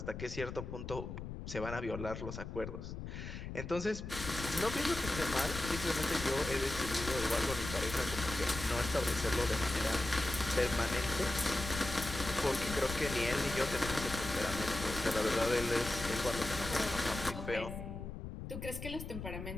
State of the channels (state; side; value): noise; left; rumble, 8 dB below the sound